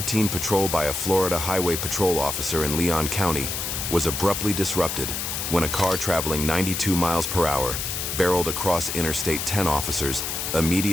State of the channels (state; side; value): noise; left; hiss, 3 dB below the sound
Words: patrol by a Florida Highway Patrol officer in Leon County was abruptly disrupted when a car traveling 92 miles per hour barreled across Interstate 10. Officers